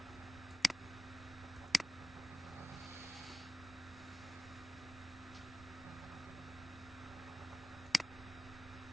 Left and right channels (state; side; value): normal; both; correlation 0.97